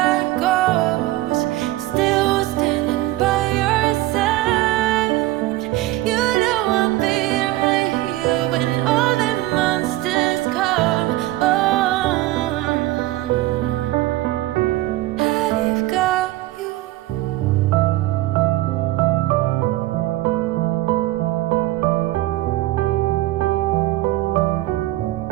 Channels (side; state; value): left; quieter; 17.0 dB